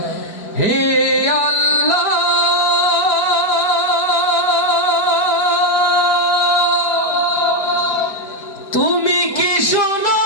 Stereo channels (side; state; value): right; late; 4.5 ms